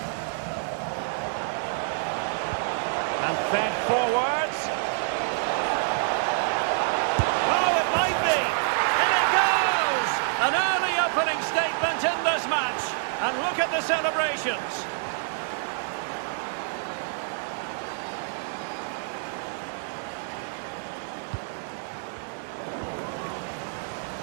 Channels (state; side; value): silent; left; digital silence